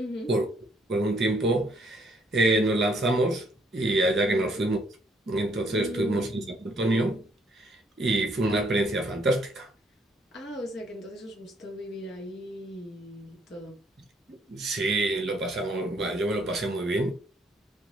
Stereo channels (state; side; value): normal; both; correlation 0.67